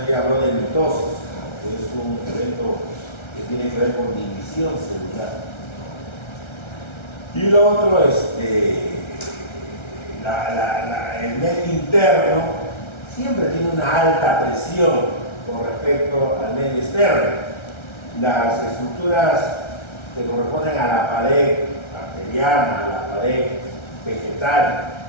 ya habló de mitosis, que es un evento que tiene que ver con división celular. Y lo otro es el medio interno siempre tiene una alta presión con respecto al medio externo. Las estructuras que corresponden a la pared bacteriana, a la pared vegetal,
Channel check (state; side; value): late; right; 1.3 ms